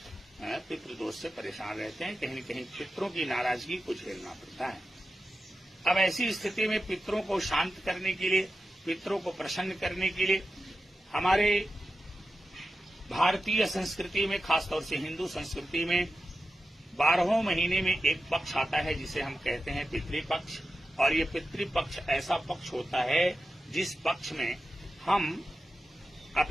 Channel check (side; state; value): both; normal; correlation 0.92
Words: पितृदोष से परेशान रहते हैं, कहीं न कहीं पितरों की नाराजगी को झेलना पड़ता है। अब ऐसी स्थिति में पितरों को शांत करने के लिए, पितरों को प्रसन्न करने के लिए हमारे भारतीय संस्कृति में, खासतौर से हिंदू संस्कृति में 12वें महीने में एक पक्ष आता है जिसे हम कहते हैं पितृपक्ष। और ये पितृपक्ष ऐसा पक्ष होता है जिस पक्ष में हम